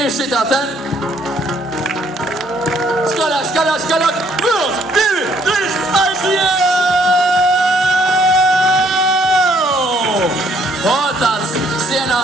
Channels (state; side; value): normal; both; correlation 0.65